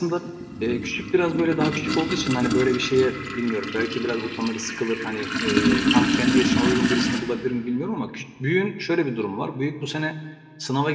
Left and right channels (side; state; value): both; identical; correlation 1.00